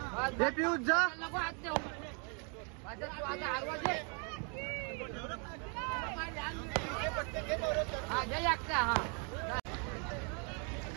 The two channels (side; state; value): left; quieter; 37.5 dB